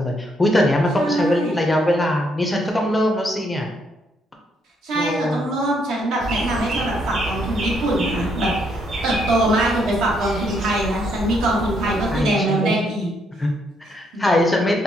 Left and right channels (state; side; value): normal; both; correlation 0.73